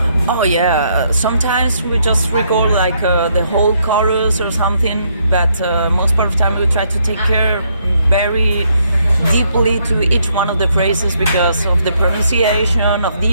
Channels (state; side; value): inverted; both; correlation -0.73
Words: Oh yeah, sometimes we just record like the whole chorus or something, but most part of the time we try to take care very deeply to each one of the phrases because of the pronunciation, of